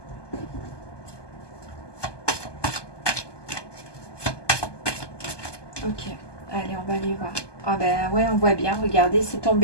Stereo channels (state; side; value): late; right; 1.2 ms